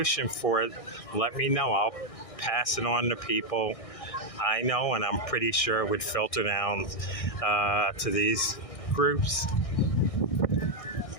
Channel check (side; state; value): right; late; 1.6 ms